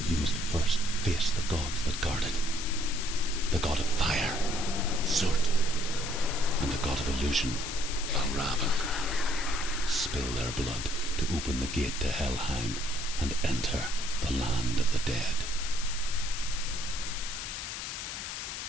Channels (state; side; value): noise; left; hiss, 6 dB below the sound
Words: you must first face the gods that guard it. The god of fire, Surt, and the god of illusion, Valravan. Spill their blood to open the gate to Helheim and enter the land of the dead.